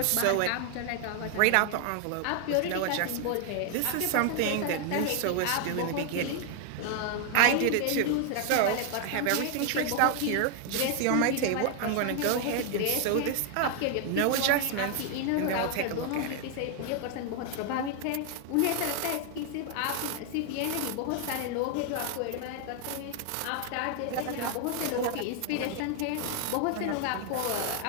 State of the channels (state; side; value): different; both; correlation 0.00